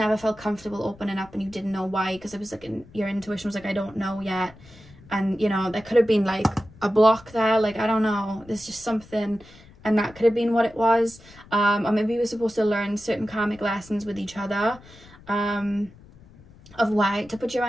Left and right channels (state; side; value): noise; left; rumble, 23 dB below the sound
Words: felt comfortable opening up, and you didn't know why, because it was like your intuition was like, I don't know yet. And you know, there could have been like a block there, like I don't know, there's just something, and that could have been what it was. Or maybe you were supposed to learn certain karmic lessons with each other, of why to put your